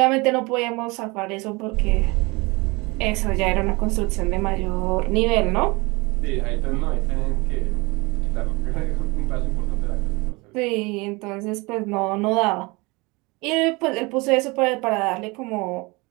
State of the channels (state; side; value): quieter; left; 25.5 dB